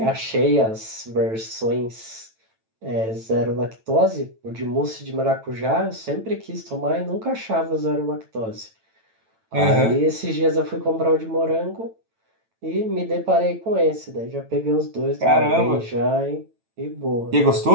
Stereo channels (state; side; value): late; left; 9.0 ms